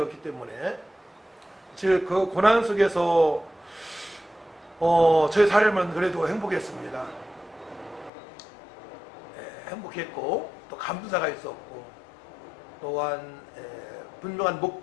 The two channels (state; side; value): drops out; right; at 8.1 s